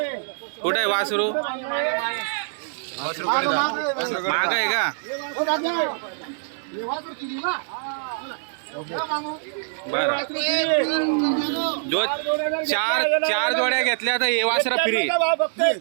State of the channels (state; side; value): silent; left; 63 dB below the other